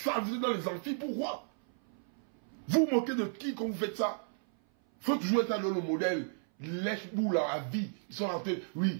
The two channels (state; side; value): silent; left; 56 dB below the other